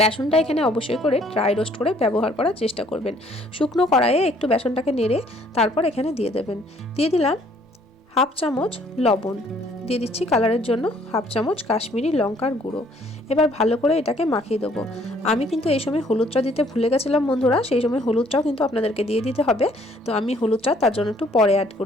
বেসনটা এখানে অবশ্যই করে ড্রাই রোস্ট করে ব্যবহার করার চেষ্টা করবেন। শুকনো কড়াইয়ে একটু বেসনটাকে নেড়ে তারপর এখানে দিয়ে দেবেন। দিয়ে দিলাম 1/2 চামচ লবণ, দিয়ে দিচ্ছি কালারের জন্য 1/2 চামচ কাশ্মীরি লঙ্কার গুঁড়ো। এবার ভালো করে এটাকে মাখিয়ে দেবো। আমি কিন্তু এই সময় হলুদটা দিতে ভুলে গেছিলাম বন্ধুরা, সেই সময় হলুদটাও কিন্তু আপনাদেরকে দিয়ে দিতে হবে। তো আমি হলুদটা তার জন্য একটু পরে অ্যাড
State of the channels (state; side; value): normal; both; correlation 0.62